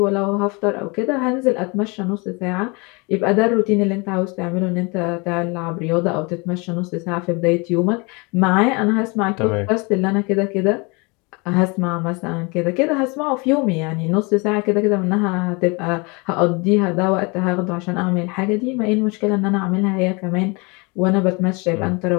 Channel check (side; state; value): right; quieter; 29.0 dB